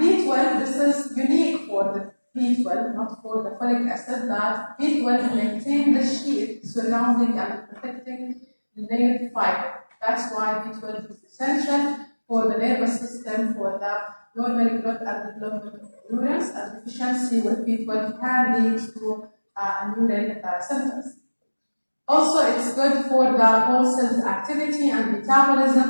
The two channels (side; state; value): both; inverted; correlation -1.00